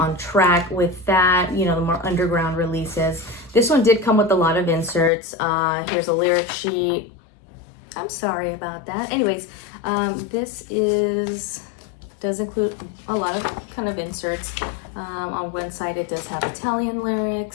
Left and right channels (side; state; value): right; drops out; at 5.1 s